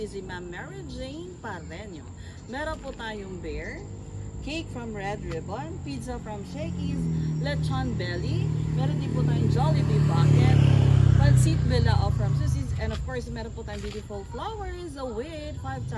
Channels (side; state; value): both; identical; correlation 1.00